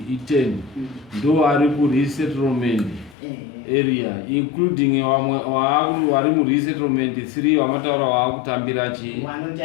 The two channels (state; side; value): drops out; right; at 3.2 s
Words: Iteni ndo ari ku resettlement area including vari mu resettlement 3 vamataura vaakutambira chi